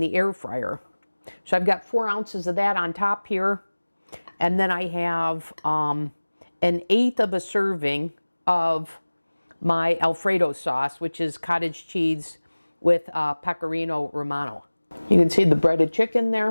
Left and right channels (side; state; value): both; inverted; correlation -1.00